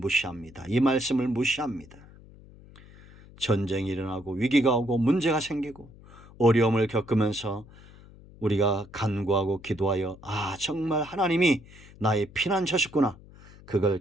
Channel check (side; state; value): left; noise; hum, 22 dB below the sound